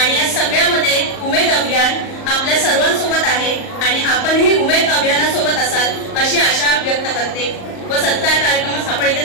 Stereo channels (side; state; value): right; late; 38 ms